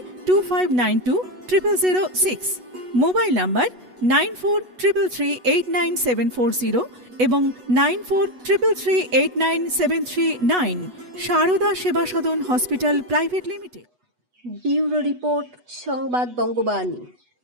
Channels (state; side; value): late; left; 8.1 ms